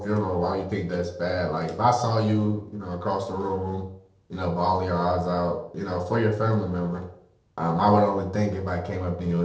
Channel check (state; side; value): identical; both; correlation 1.00